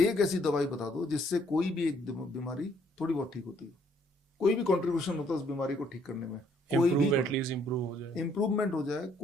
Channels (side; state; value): both; normal; correlation 0.66